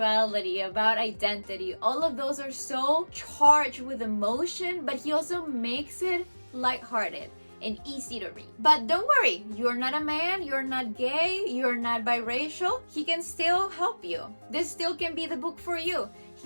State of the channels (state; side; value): inverted; both; correlation -1.00